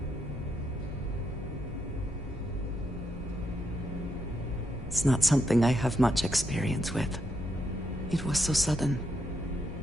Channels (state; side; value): normal; both; correlation 0.80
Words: It's not something I have much experience with. It was so sudden.